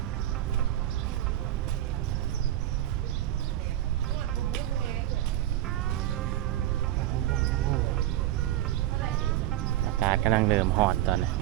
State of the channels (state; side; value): quieter; left; 13.6 dB